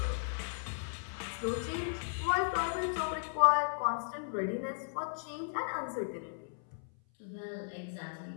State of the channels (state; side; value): silent; right; 54 dB below the other